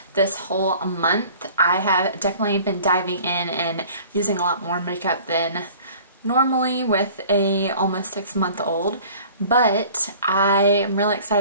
this whole month. I have definitely been diving in and using a lot more makeup than normally with a almost 6-month-old, but I am really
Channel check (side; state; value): both; inverted; correlation -0.48